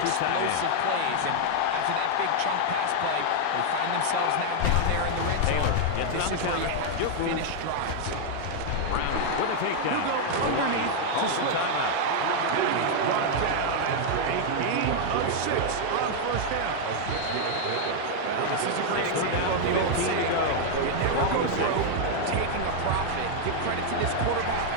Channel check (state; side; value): different; both; correlation 0.00